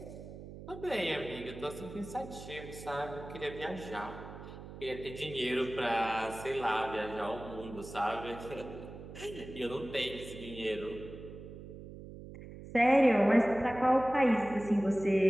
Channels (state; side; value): noise; right; hum, 13 dB below the sound